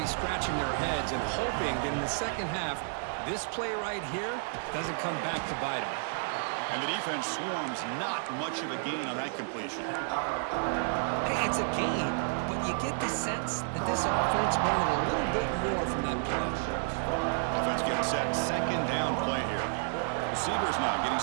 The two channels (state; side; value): silent; left; digital silence